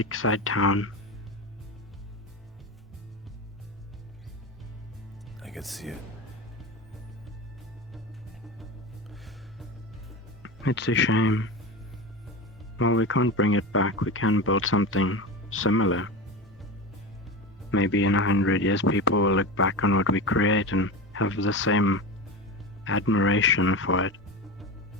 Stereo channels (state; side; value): normal; both; correlation 0.24